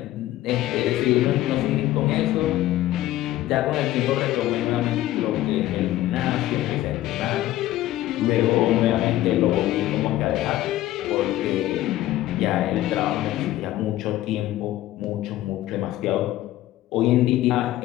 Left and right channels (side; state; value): right; quieter; 14.8 dB